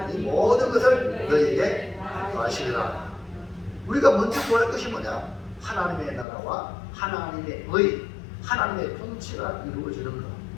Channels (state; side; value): drops out; right; at 6.2 s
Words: 이 모든 것을 너희에게 더하시리라. 우리가 먼저 구할 것이 뭐냐? 하나님의 나라와 하나님의 의, 하나님의 통치가 이루어지는